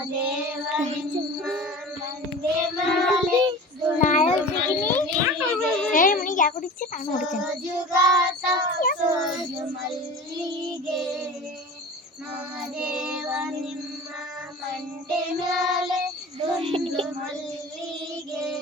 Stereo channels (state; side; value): normal; both; correlation 0.36